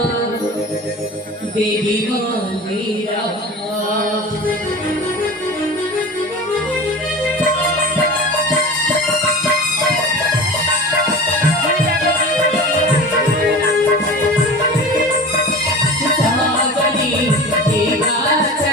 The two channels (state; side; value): normal; both; correlation 0.34